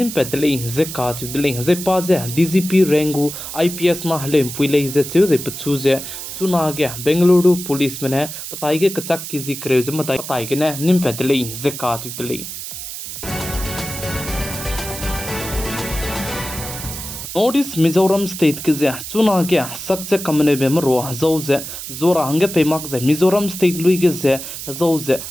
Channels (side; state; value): right; noise; hiss, 8 dB below the sound